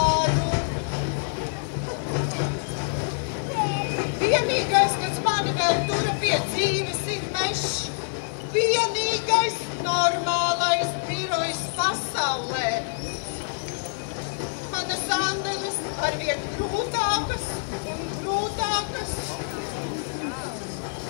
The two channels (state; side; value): silent; right; digital silence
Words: Vienīgais, kas mani vēl tura pie dzīves, ir mešs. Vienīgais normālais birojs pasaulē. Manas andeles arvien grūtākas un grūtākas.